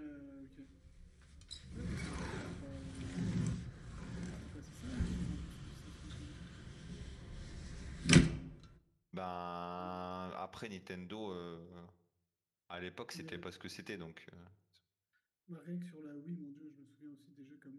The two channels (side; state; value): both; identical; correlation 1.00